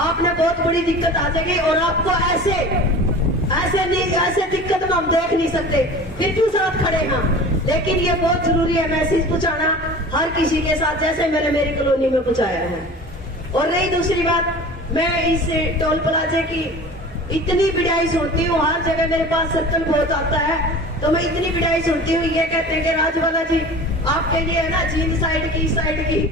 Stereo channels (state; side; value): normal; both; correlation 0.39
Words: बहुत बड़ी दिक्कत आ जाएगी और आपको ऐसे दिक्कत में हम देख नहीं सकते, फिर क्यों साथ खड़े हैं। लेकिन ये बहुत जरूरी है मैसेज पहुंचाना हर किसी के साथ, जैसे मैंने मेरी कॉलोनी में पहुंचाया है। और रही दूसरी बात, मैं इस टोल प्लाजे की इतनी बिड़ाई सुनती हूँ, हर जगह मेरे पास सर्कल बहुत आता है तो मैं इतनी बिड़ाई सुनती हूँ, ये कहते हैं कि राजवाला जी आपके लिए है ना जींद साइड की इस साइड की